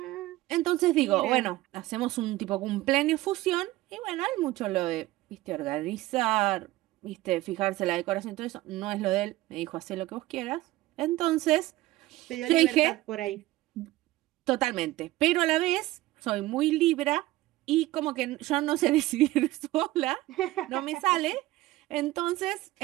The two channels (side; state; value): left; quieter; 17.7 dB